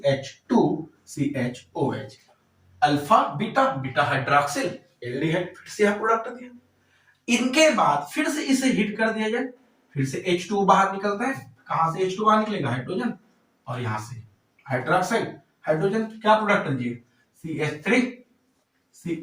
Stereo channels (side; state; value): both; identical; correlation 1.00